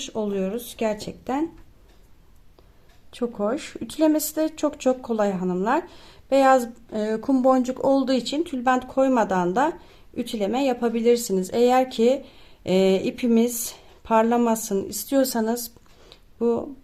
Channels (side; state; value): both; identical; correlation 1.00